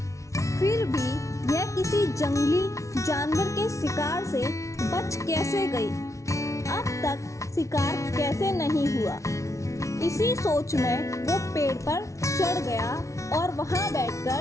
फिर भी यह किसी जंगली जानवर के शिकार से बच कैसे गई? अब तक शिकार कैसे नहीं हुआ? इसी सोच में वो पेड़ पर चढ़ गया और वहाँ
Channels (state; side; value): late; right; 0.14 ms